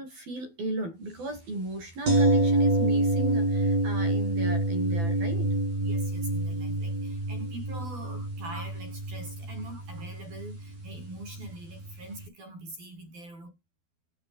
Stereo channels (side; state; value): left; late; 12 ms